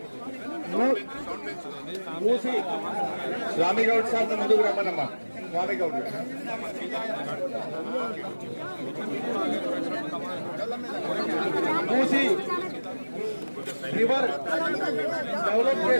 స్వామి గౌడ్ సార్ ముందుకు రమ్మనమ్మా. స్వామి గౌడ్ మూసి రివర్ డెవలప్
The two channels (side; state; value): both; inverted; correlation -1.00